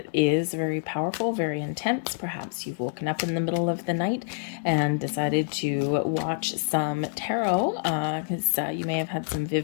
is very powerful, very intense. Perhaps you've woken up in the middle of the night and decided to watch some tarot because you may have had some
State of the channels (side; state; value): right; silent; digital silence